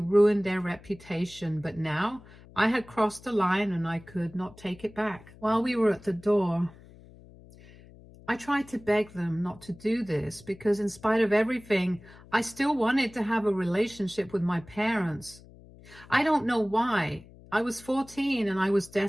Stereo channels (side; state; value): left; noise; hum, 22 dB below the sound